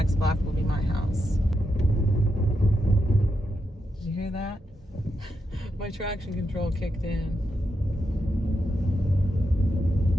block will be my house. Did you hear that? My traction control kicked in.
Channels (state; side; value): normal; both; correlation 0.85